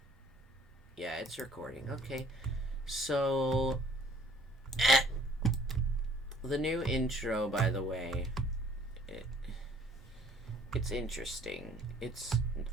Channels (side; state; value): both; normal; correlation 0.57